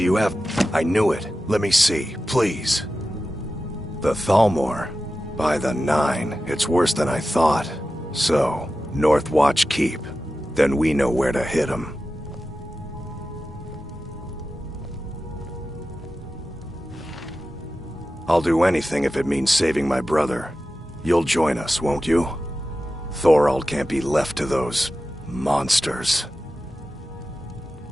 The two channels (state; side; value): normal; both; correlation 0.93